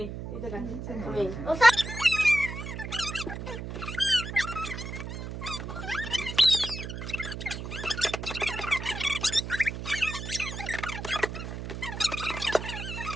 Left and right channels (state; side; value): noise; right; hum, 7 dB below the sound